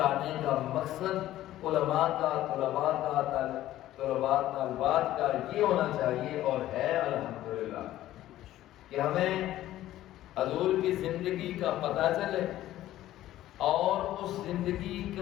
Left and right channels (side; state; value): right; quieter; 14.1 dB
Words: کا مقصد علماء کا، طلباء کا، طلباء طالبات کا یہ ہونا چاہیے اور ہے الحمدللہ، کہ ہمیں حضور کی زندگی کا پتہ چلے، اور اس زندگی